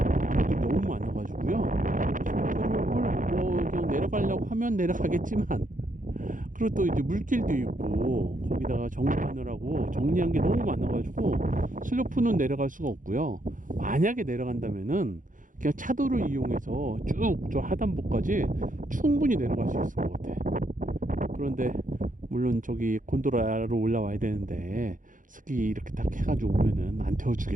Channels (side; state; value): left; late; 0.38 ms